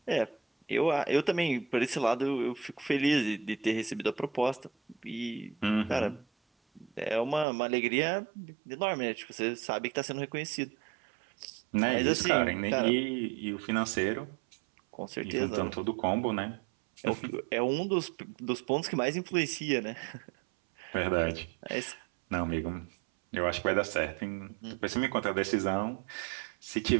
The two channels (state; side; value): drops out; left; at 7.5 s